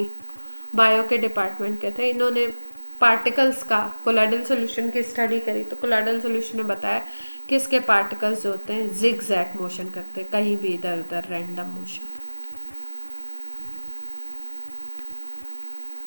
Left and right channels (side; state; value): both; inverted; correlation -1.00